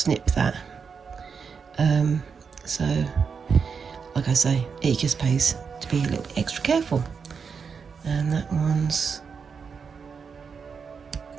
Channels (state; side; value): quieter; left; 5.9 dB